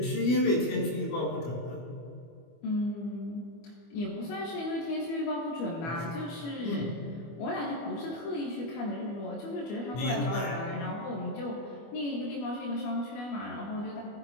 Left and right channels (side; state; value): right; late; 25 ms